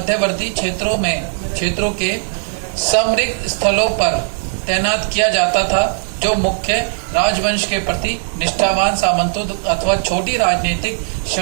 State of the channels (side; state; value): left; silent; 68 dB below the other